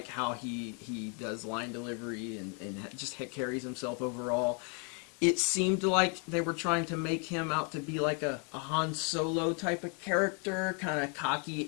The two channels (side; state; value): right; quieter; 37.4 dB